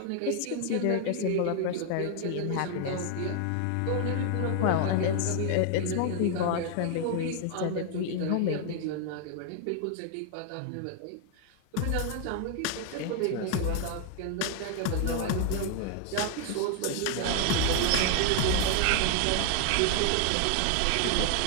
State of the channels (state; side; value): different; both; correlation 0.00